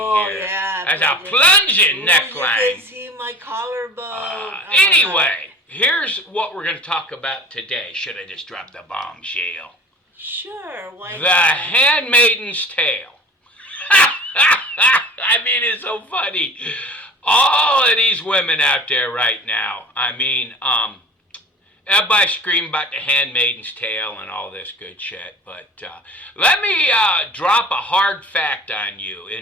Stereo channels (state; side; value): normal; both; correlation 0.42